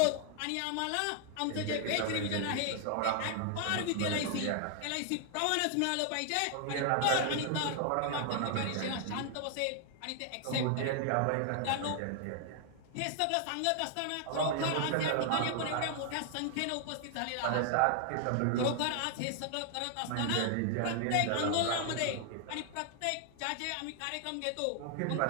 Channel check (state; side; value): different; both; correlation 0.00